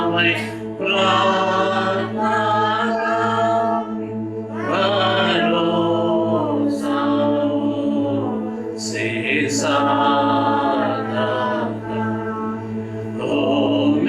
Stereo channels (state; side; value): identical; both; correlation 1.00